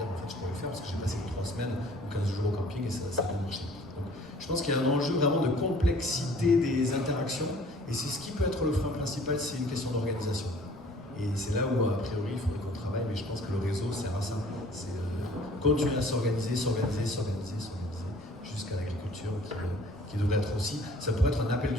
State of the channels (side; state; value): right; noise; rumble, 26 dB below the sound